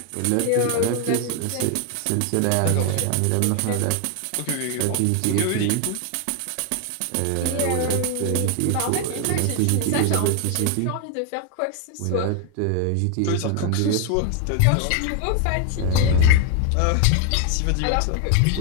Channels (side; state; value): both; different; correlation 0.01